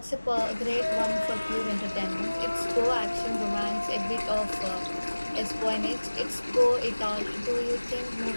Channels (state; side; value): inverted; both; correlation -1.00